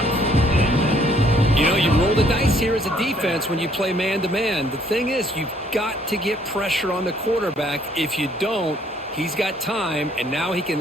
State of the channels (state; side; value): normal; both; correlation 0.64